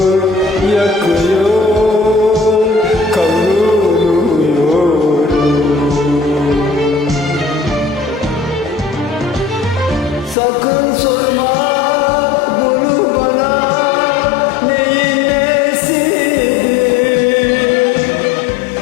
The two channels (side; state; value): right; drops out; at 10.4 s